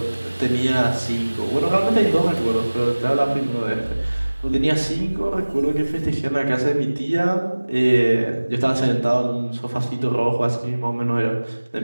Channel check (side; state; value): both; inverted; correlation -1.00